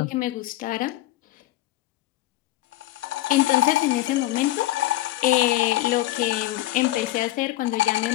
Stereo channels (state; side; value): quieter; right; 15.8 dB